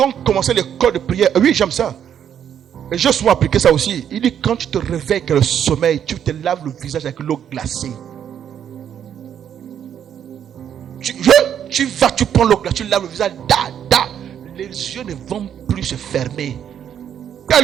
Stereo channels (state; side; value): quieter; left; 9.1 dB